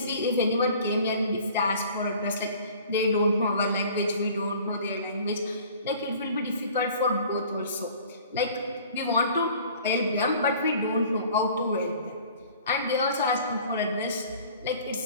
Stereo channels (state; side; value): inverted; both; correlation -0.49